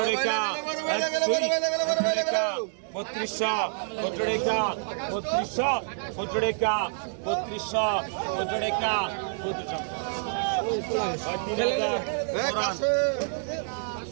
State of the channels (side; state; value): left; silent; digital silence